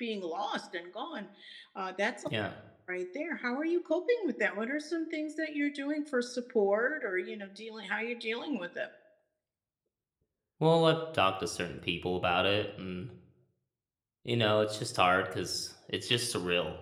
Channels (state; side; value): identical; both; correlation 1.00